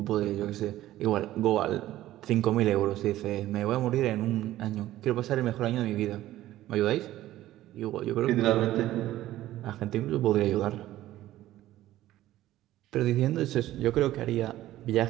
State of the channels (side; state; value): left; quieter; 14.6 dB